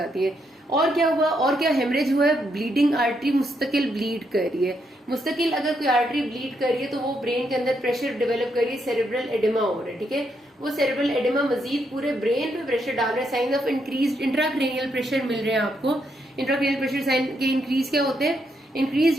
है। और क्या हुआ, और क्या हेमरेज हुआ है, ब्लीडिंग आर्टरी मुस्तकिल ब्लीड कर रही है। मुस्तकिल अगर कोई आर्टरी ब्लीड कर रही है तो वो ब्रेन के अंदर प्रेशर डेवलप कर रही है, सेरेब्रल एडिमा हो रहा है। ठीक है, वो सेरेब्रल एडिमा मजीद पूरे ब्रेन पे प्रेशर डाल रहा है। Sign of increase intracranial pressure मिल रहे हैं आपको। इंट्राक्रेनियल प्रेशर साइन के इंक्रीज क्या होते हैं,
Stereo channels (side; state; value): both; normal; correlation 0.78